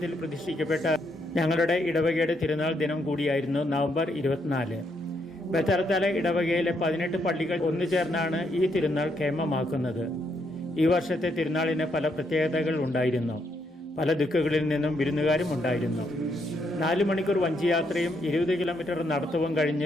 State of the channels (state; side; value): normal; both; correlation 0.76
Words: പ്രതിഷ്ഠിക്കപ്പെട്ട ഞങ്ങളുടെ ഇടവകയുടെ തിരുനാൾ ദിനം കൂടിയായിരുന്നു നവംബർ 24. ബത്തലത്തല ഇടവകയിലെ 18 പള്ളികൾ ഒന്നുചേർന്നാണ് ഈ തിരുനാൾ കേമമാക്കുന്നത്. ഈ വർഷത്തെ തിരുനാളിന് പല പ്രത്യേകതകൾ ഉണ്ടായിരുന്നു. പല ദിക്കുകളിൽ നിന്നും വിരുന്നുകാരും ഉണ്ടായിരുന്നു. 4 മണിക്കൂർ വഞ്ചിയാത്രയും 20 കിലോമീറ്റർ നടത്തവും